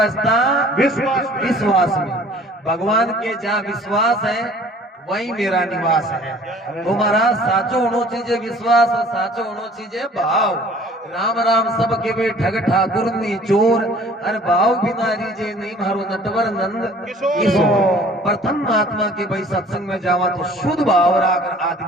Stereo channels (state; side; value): normal; both; correlation 0.51